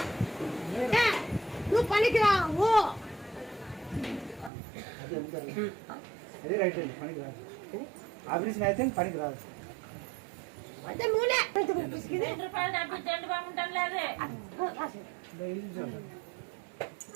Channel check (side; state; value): left; drops out; at 4.5 s